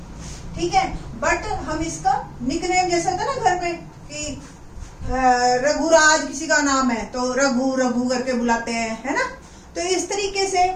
ठीक है। बट हम इसका निकनेम जैसे होता है ना घर में कि रघुराज किसी का नाम है तो रघु रघु करके बुलाते हैं, है ना। तो इस तरीके से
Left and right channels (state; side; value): identical; both; correlation 1.00